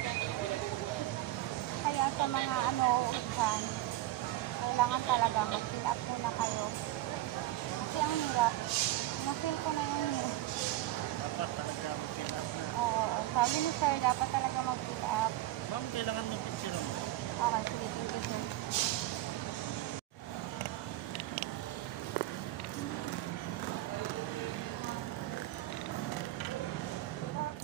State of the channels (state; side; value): quieter; left; 15.6 dB